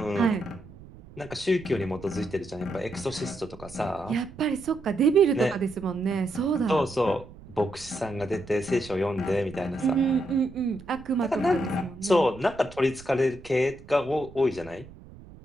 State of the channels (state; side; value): noise; right; rumble, 19 dB below the sound